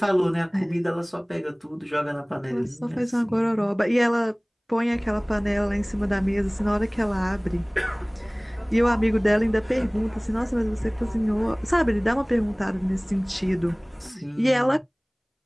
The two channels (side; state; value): both; identical; correlation 1.00